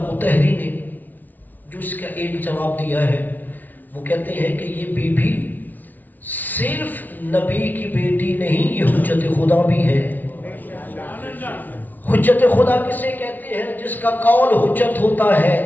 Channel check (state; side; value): late; right; 0.081 ms